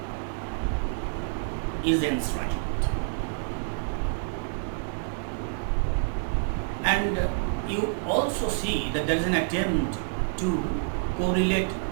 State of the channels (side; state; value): left; silent; 57 dB below the other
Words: is enshrined. And you also see that there is an attempt to correlate